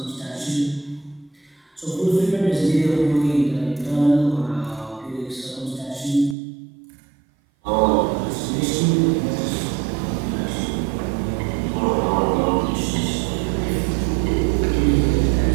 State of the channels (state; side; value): drops out; left; at 6.4 s